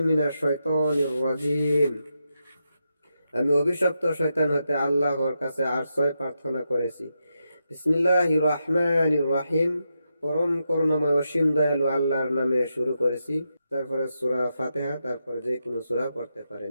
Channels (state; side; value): inverted; both; correlation -0.85